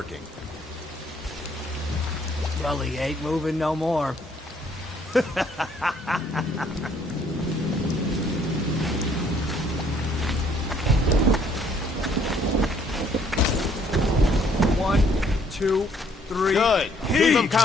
Well, he ain't moving no more. One, two, three. Good. Keep them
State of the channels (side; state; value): both; normal; correlation 0.64